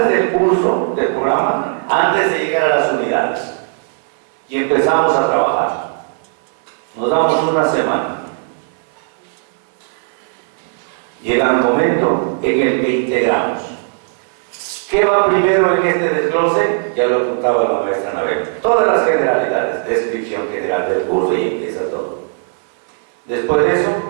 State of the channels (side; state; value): left; silent; 61 dB below the other